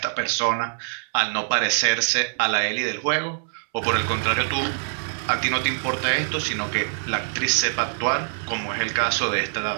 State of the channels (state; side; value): silent; left; 63 dB below the other